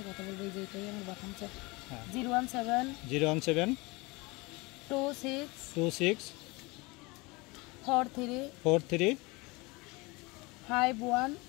কথা বলবে। এই যে এটাই আমার বাথামছে 017 26 43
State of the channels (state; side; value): quieter; right; 25.0 dB